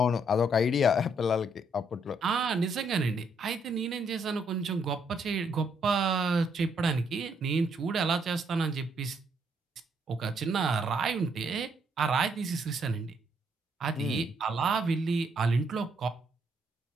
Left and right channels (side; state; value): both; normal; correlation 0.72